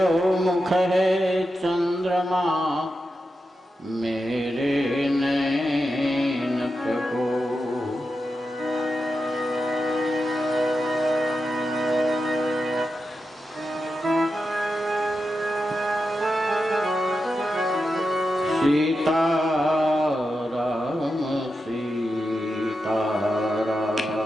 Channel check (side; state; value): both; normal; correlation 0.89